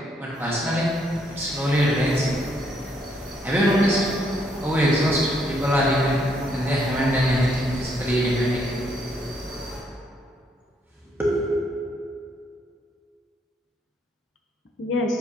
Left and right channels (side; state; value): both; normal; correlation 0.72